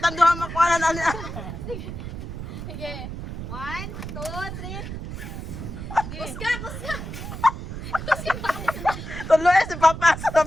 duha makuanan ani. Sige. 1, 2, 3. Kusga. Tuloy si Papa sa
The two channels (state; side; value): noise; right; rumble, 8 dB below the sound